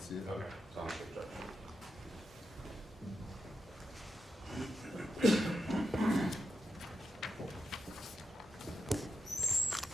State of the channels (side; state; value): both; normal; correlation 0.86